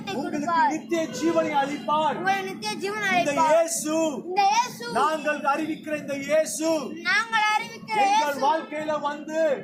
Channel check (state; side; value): identical; both; correlation 1.00